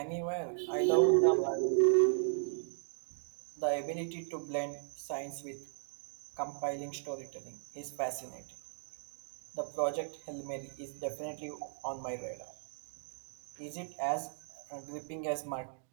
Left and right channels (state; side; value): silent; left; digital silence